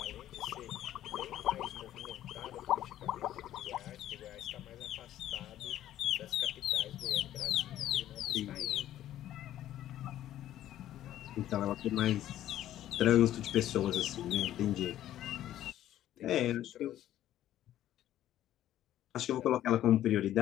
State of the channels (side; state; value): right; quieter; 12.6 dB